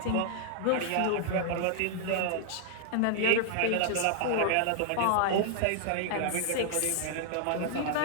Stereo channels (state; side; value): different; both; correlation -0.01